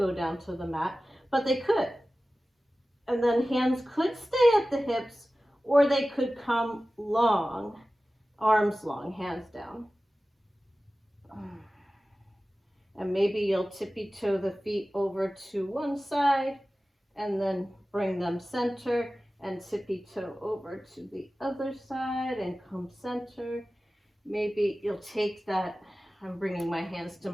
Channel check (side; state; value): both; normal; correlation 0.96